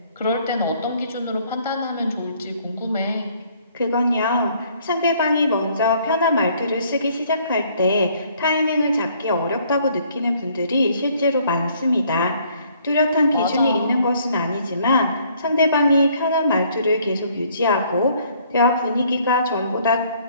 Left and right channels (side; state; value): both; inverted; correlation -0.63